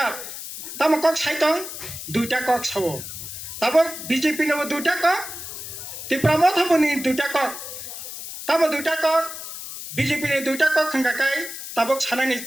তাম কক সাইতং 2টা কক সাবো তাবো বিজেপি নেব 2টা কক ত্রিপুরা মথাবনি 2টা কক তাবো 2টা কক बीजेपी ने 2টা কক खांगाकाय ताबक सानानि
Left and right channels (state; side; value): noise; left; hiss, 9 dB below the sound